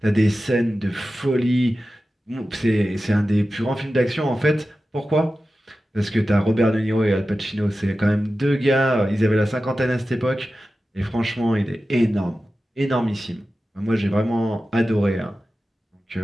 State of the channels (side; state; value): both; normal; correlation 0.94